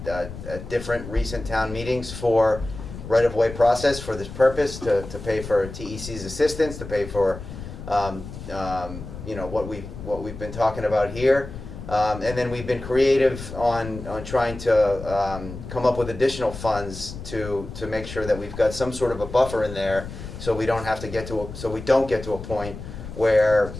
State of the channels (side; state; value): left; noise; rumble, 11 dB below the sound